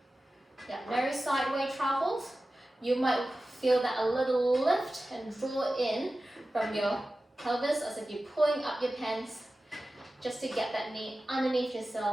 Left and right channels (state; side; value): normal; both; correlation 0.95